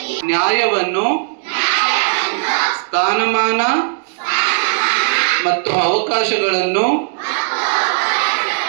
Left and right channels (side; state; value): left; silent; digital silence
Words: ನ್ಯಾಯವನ್ನು, ಸ್ಥಾನಮಾನ ಮತ್ತು ಅವಕಾಶಗಳನ್ನು